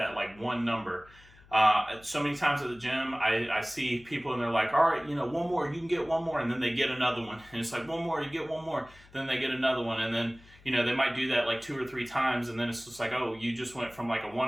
like one number. So many times at the gym, I see people and they're like, all right, you know, 1 more, you can get 1 more. And then they get another one. And it's like 1 more, you get 1 more. Then they get another one. And then, you know, they might do that like 2 or 3 times. And then it's just like, oh, you just went from like a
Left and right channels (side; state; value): left; noise; hum, 25 dB below the sound